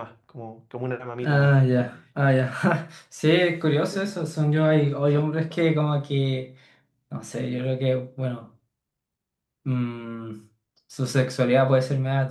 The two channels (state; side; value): identical; both; correlation 1.00